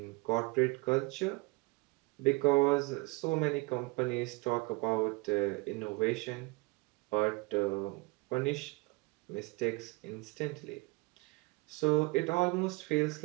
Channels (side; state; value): left; quieter; 25.5 dB